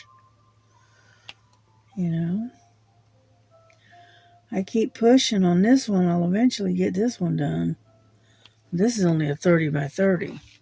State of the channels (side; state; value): both; identical; correlation 1.00